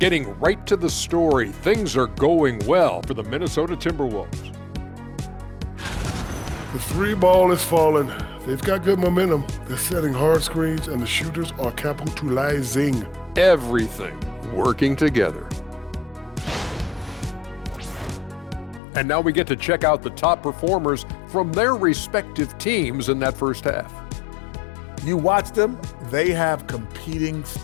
Getting right to the story, things are going well for the Minnesota Timberwolves. The 3 ball is falling. They've got good momentum. They're setting hard screens, and the shooters are capitalizing. Everything working together. And now we get to check out the top performers from their respective teams in that first half. You watch them, they have competing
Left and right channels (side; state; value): right; drops out; at 18.8 s